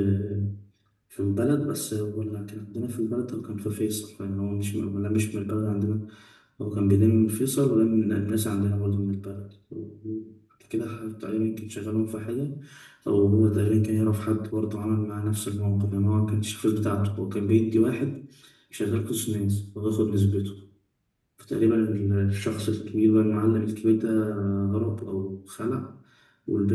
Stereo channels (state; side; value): identical; both; correlation 1.00